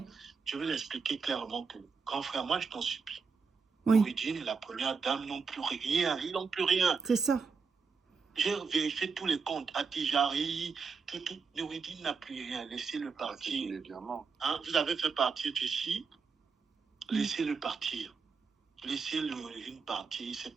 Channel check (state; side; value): quieter; left; 5.2 dB